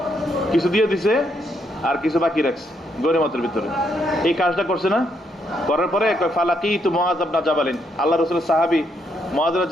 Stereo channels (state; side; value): normal; both; correlation 0.75